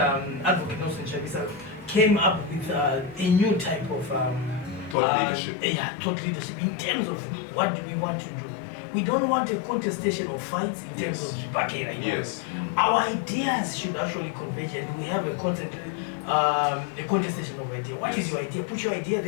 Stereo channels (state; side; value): drops out; right; at 5.0 s